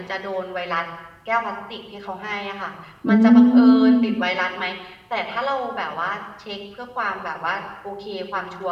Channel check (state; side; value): identical; both; correlation 1.00